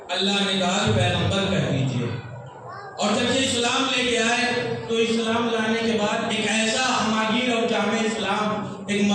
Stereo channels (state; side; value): identical; both; correlation 1.00